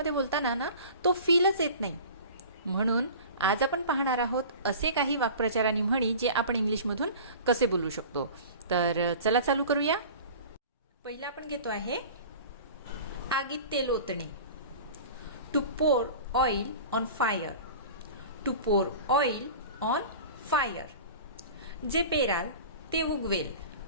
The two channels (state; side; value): inverted; both; correlation -0.39